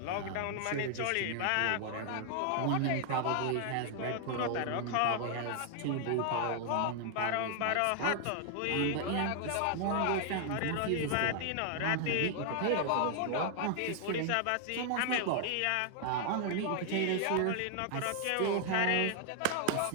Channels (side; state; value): both; different; correlation 0.00